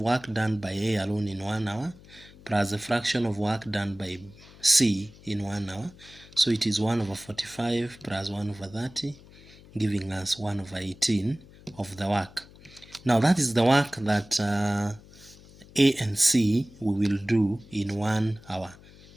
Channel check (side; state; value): left; noise; hum, 22 dB below the sound